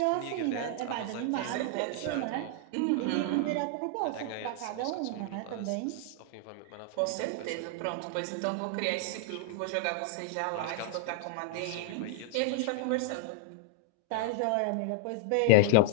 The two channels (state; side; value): different; both; correlation -0.01